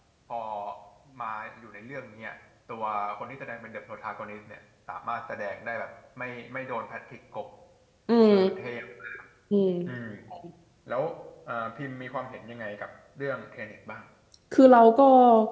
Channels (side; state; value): both; identical; correlation 1.00